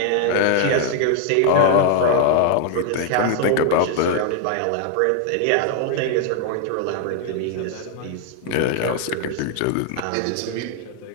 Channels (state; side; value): different; both; correlation 0.00